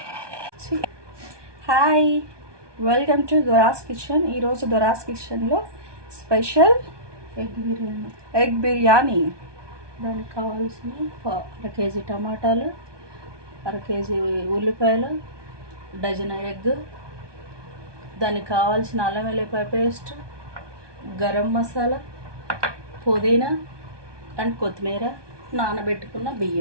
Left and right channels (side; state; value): left; late; 1.2 ms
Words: Hi, welcome to Dora's kitchen. ఈరోజు దొరాస్ కిచెన్లో స్పెషల్ ఎగ్ బిర్యానీ. దానికి కావాల్సిన అర కేజీ టమాటాలు, అర కేజీ ఉల్లిపాయలు, డజన్ ఎగ్, దానికి కావాల్సిన అల్లం వెల్లిపాయ పేస్ట్, గరం మసాలా, పుదీనా అండ్ కొత్తిమీర, నానబెట్టుకున్న